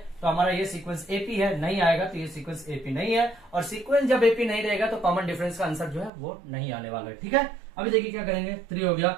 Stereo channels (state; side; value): drops out; left; at 6.1 s